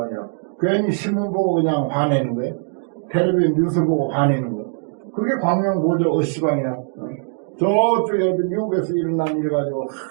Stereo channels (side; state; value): left; silent; 65 dB below the other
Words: 괜히 신문 보고 그냥 화내는 거예요. 텔레비전 뉴스 보고 화내는 거. 그게 광명보조 시방이야. 저쪽에 미국에서 일어난 일 가지고